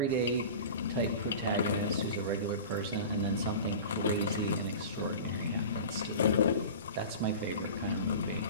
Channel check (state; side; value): inverted; both; correlation -0.35